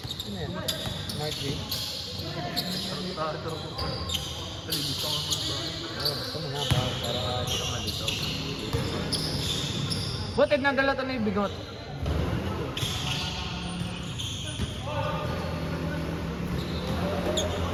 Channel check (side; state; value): both; identical; correlation 1.00